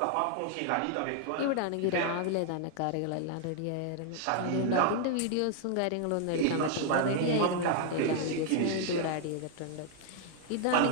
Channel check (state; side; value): different; both; correlation 0.00